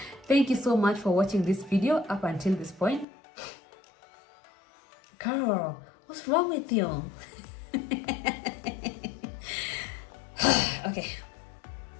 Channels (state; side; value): drops out; right; at 3.1 s